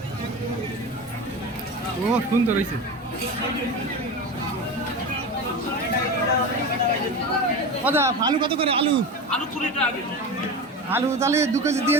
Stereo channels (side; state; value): both; normal; correlation 0.26